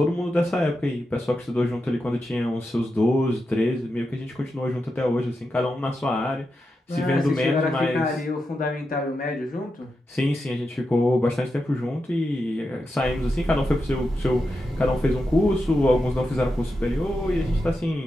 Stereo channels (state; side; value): normal; both; correlation 0.88